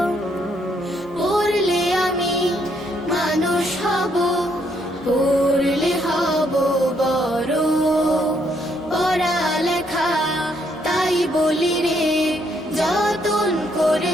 পড়লে আমি মানুষ হব, পড়লে হব বড়। পড়ালেখা তাই বলি রে, যতন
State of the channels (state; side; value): normal; both; correlation 0.72